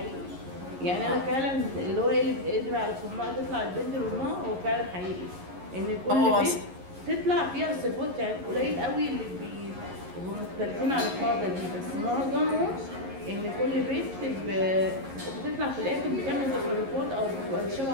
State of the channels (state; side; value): late; left; 11 ms